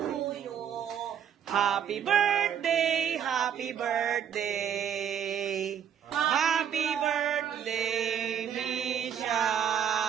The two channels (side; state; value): left; quieter; 8.7 dB